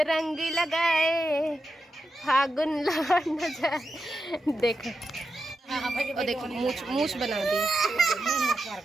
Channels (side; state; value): both; normal; correlation 0.88